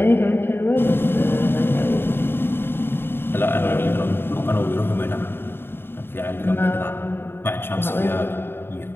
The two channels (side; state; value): right; late; 0.11 ms